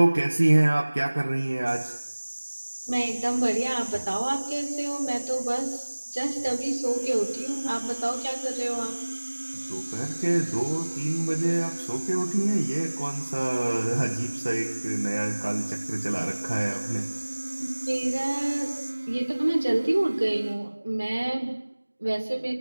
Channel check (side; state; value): both; inverted; correlation -1.00